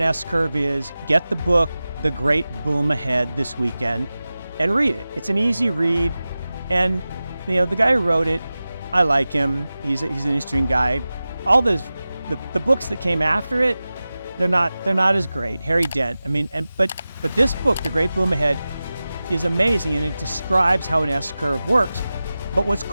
S-curve is, get the book, The Great Boom Ahead, this weekend and read it. It's an easy read. And, the guy who wrote it, I like him. He's an interesting guy. All the books that came after it, they're not as great. Harry Dent. But this book, The Great Boom Ahead, is amazing, and it describes how an S-curve works. But what's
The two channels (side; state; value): both; inverted; correlation -0.96